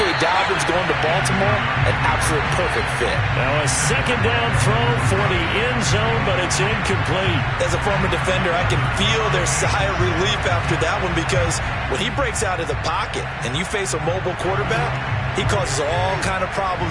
Dobbins going to Baltimore, an absolute perfect fit. Now a second down throw for the end zone, but it's incomplete. As a former defender, I can feel their sigh of relief after that one, because when he breaks out of the pocket and you face a mobile quarterback, he causes all kind of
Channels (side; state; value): both; identical; correlation 1.00